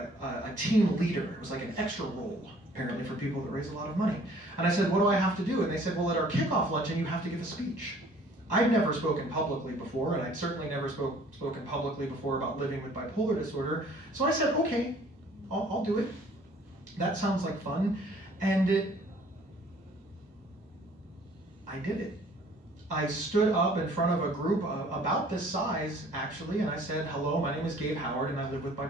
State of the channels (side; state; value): both; normal; correlation 0.55